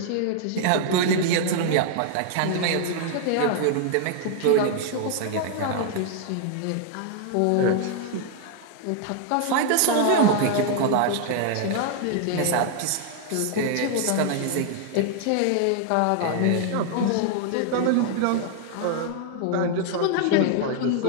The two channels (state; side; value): different; both; correlation 0.00